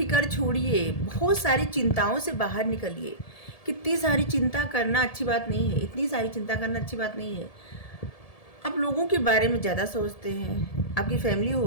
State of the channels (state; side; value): late; right; 1.7 ms